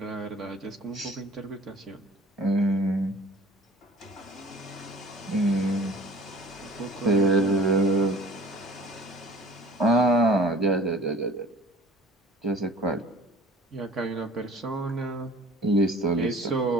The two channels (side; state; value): both; normal; correlation 0.47